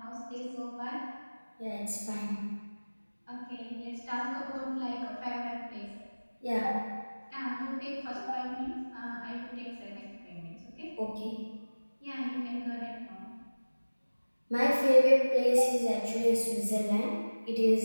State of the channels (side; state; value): both; inverted; correlation -1.00